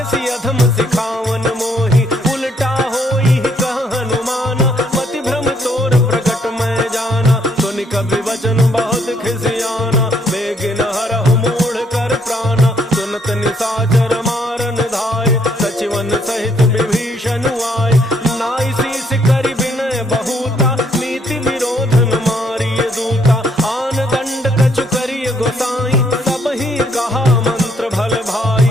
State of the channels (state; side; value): normal; both; correlation 0.69